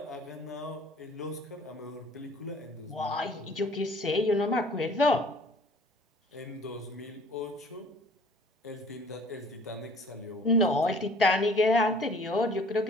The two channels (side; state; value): both; normal; correlation 0.53